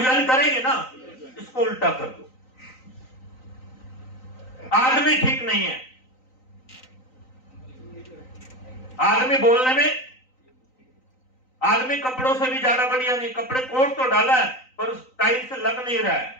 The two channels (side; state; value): right; late; 3.9 ms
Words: ज्वाइन करेंगे ना। इसको उल्टा कर दो, आदमी ठीक नहीं है, आदमी बोलने में, आदमी कपड़ों से भी ज्यादा बढ़िया नहीं, कपड़े कोट तो डाला है पर उस टाइप से लग नहीं रहा है,